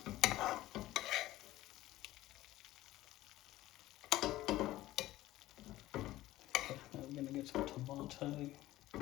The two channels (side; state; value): right; quieter; 16.1 dB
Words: We're going to get some tomato.